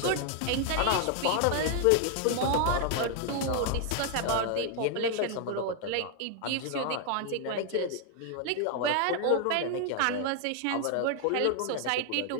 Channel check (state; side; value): different; both; correlation 0.00